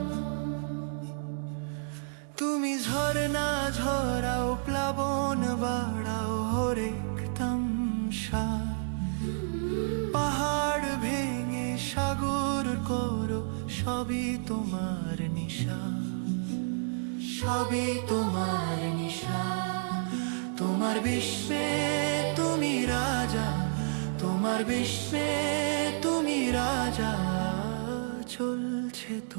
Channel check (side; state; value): left; silent; digital silence